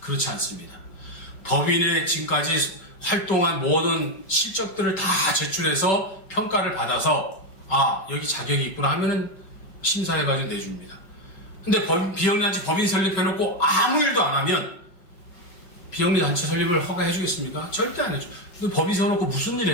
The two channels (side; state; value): right; late; 5.4 ms